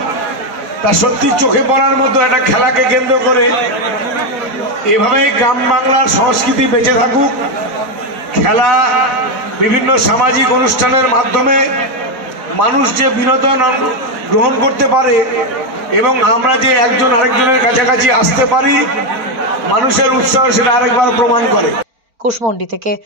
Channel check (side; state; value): left; late; 4.8 ms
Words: তা সত্যি চোখে পড়ার মতো। একটা খেলাকে কেন্দ্র করে এভাবেই গ্রাম বাংলার সংস্কৃতি বেঁচে থাকুক। খেলা বিভিন্ন সামাজিক অনুষ্ঠানের মাধ্যমে মানুষ যে বিনোদন গ্রহণ করতে পারে এবং আমরা যে একজন আরেকজনের কাছাকাছি আসতে পারি, মানুষের উৎসাহ সেটা আরেকবার প্রমাণ করে। কুশমন্ডি থেকে